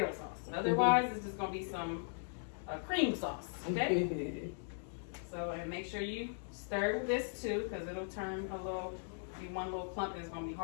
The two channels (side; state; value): right; silent; digital silence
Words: sauce. Otherwise, it's just gonna be some cream sauce. Okay. So, and make sure you stir this too, because it'll turn be one little clump, and it's gonna be